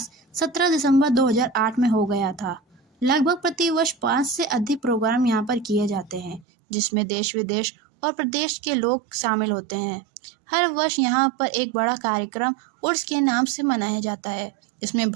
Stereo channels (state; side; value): drops out; left; at 6.5 s